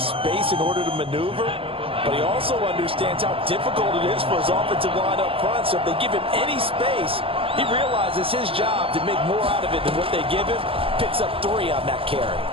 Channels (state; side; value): late; left; 0.26 ms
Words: space in order to maneuver. But he also understands how difficult it is for his offensive line up front. So if they give him any space, he realizes his job to make more out of it than what they give him. Picks up 3 on that carry.